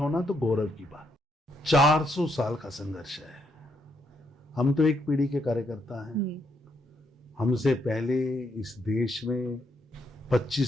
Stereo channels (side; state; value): both; normal; correlation 0.76